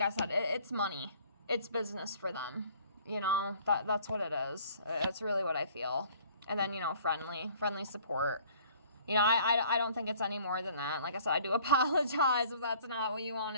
I said, it's money. It's business for them. You know, that's what it is. It's really what I feel. And then, you know, friendly support. You know, I don't think it's any more than that. Like I said, I do apologize if that's not what you want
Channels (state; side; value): inverted; both; correlation -0.54